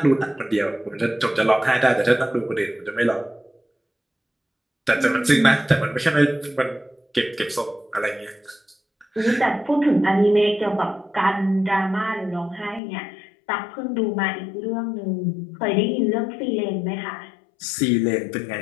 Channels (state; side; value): drops out; right; at 12.8 s